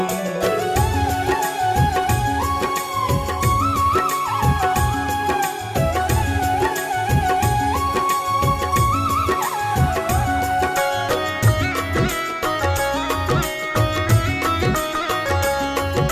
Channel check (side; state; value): both; identical; correlation 1.00